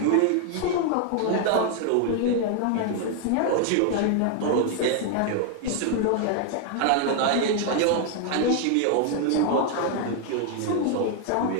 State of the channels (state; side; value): different; both; correlation 0.00